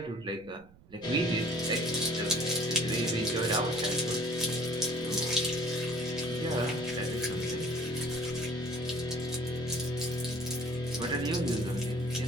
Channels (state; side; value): noise; right; rumble, 23 dB below the sound